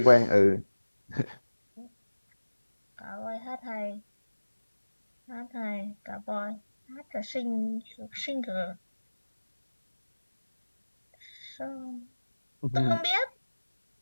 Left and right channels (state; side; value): inverted; both; correlation -1.00